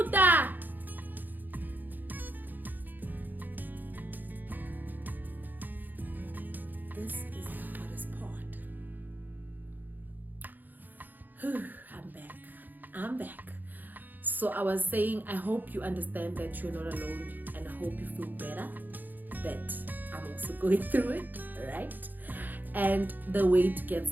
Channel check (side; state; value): left; late; 0.087 ms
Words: This is the hardest part. I'm back. So I was saying, I hope you understand that you're not alone, and I hope you feel better that I'm also going through it, right? And the weight gets